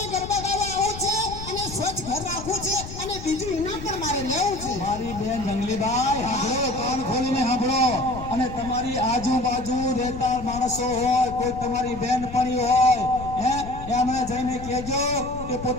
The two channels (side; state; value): left; noise; rumble, 11 dB below the sound